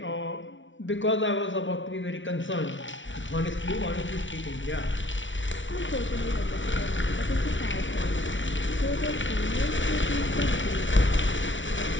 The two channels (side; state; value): right; late; 0.56 ms